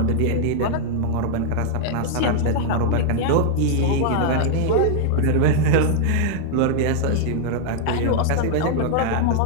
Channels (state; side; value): different; both; correlation -0.01